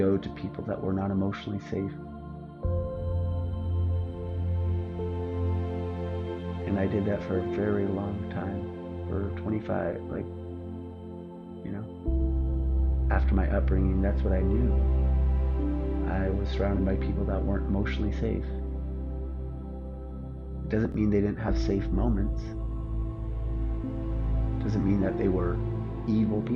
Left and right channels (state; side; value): identical; both; correlation 1.00